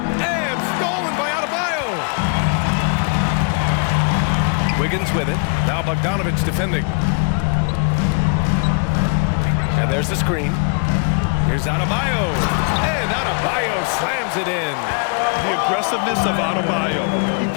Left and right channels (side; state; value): right; quieter; 35.5 dB